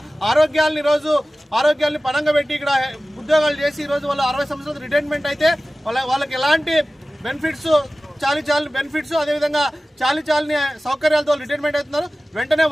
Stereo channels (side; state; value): both; normal; correlation 0.96